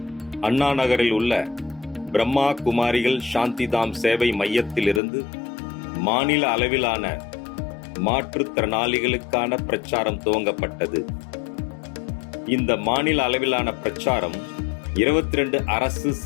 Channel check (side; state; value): right; drops out; at 5.0 s